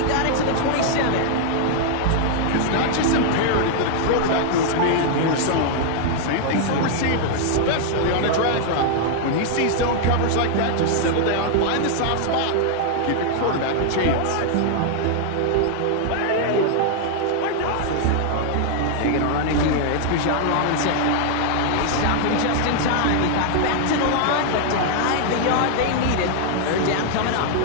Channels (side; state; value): both; different; correlation 0.00